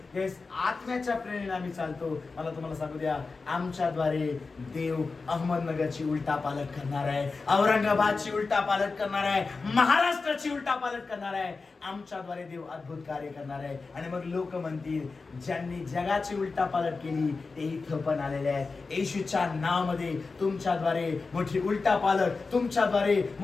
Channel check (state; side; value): quieter; right; 4.2 dB